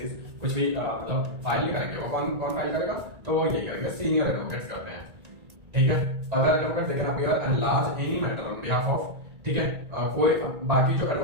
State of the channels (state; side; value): late; left; 1.9 ms